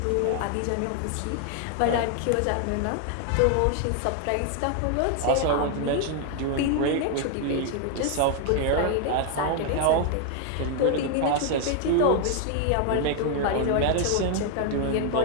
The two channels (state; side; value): different; both; correlation 0.00